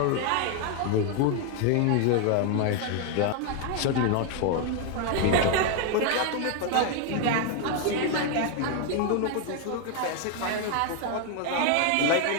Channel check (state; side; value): different; both; correlation 0.01